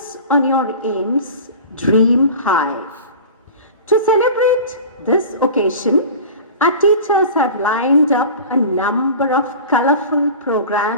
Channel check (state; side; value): inverted; both; correlation -0.37